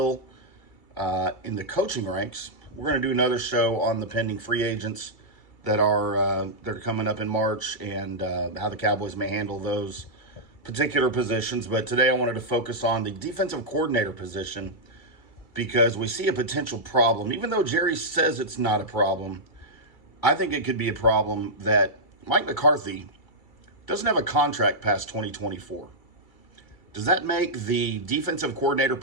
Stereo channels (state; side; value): late; right; 2.3 ms